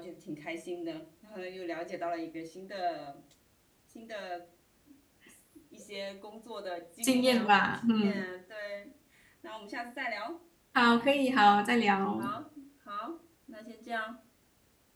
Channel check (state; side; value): identical; both; correlation 1.00